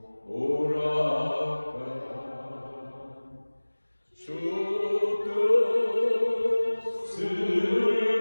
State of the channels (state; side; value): inverted; both; correlation -1.00